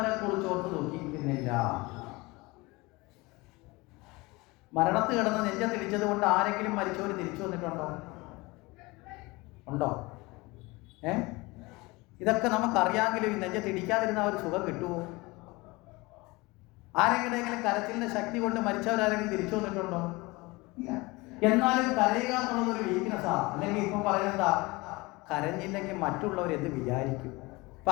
കുറിച്ച് ഓർത്ത് ദുഃഖിക്കുന്നില്ല. മരണത്ത് കിടന്ന് നെഞ്ചത്തിടിച്ചത് കൊണ്ട് ആരെങ്കിലും മരിച്ചവർ തിരിച്ചു വന്നിട്ടുണ്ടോ? ഉണ്ടോ? ഇതൊക്കെ നമുക്കറിയാമെങ്കിലും ഈ നെഞ്ചത്തിടിക്കാതിരുന്ന ഒരു സുഖം കിട്ടുമോ? ആരെങ്കിലും കരച്ചിലിന്റെ ശക്തി കൊണ്ട് മരിച്ചവരാരെങ്കിലും തിരിച്ചു വന്നിട്ടുണ്ടോ? ഇല്ല. എന്നാലും കരയുക എന്നുള്ളതൊരു വീക്ക്നെസ്സാണ്. അല്ലെങ്കിൽ ഇപ്പം പറയുന്നതാ, കരഞ്ഞില്ലെങ്കിൽ മറ്റുള്ളവർ എന്ത് വിചാരിക്കും. അപ്പൊ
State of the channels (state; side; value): quieter; right; 23.4 dB